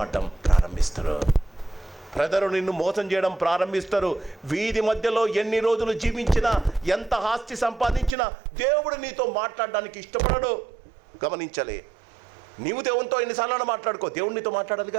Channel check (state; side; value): drops out; left; at 8.1 s